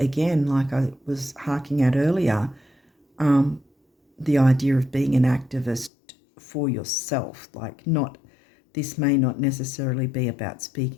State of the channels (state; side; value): drops out; right; at 5.9 s